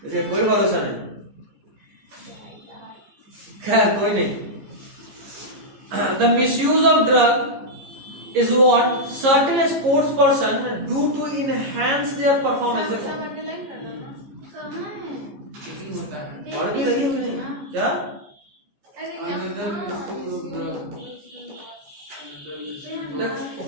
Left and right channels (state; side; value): late; left; 15 ms